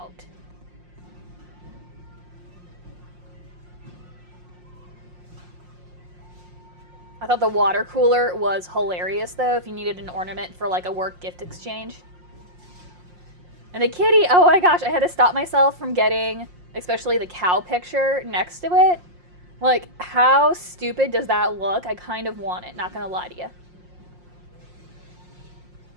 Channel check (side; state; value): left; late; 5.6 ms